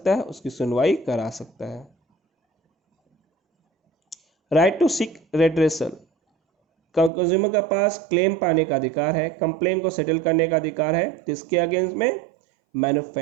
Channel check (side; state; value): left; drops out; at 7.1 s